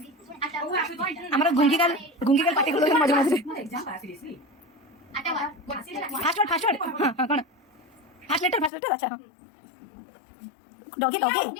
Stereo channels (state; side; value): drops out; right; at 8.7 s